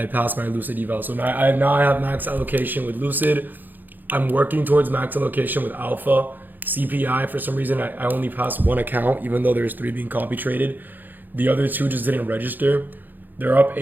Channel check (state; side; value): late; left; 0.087 ms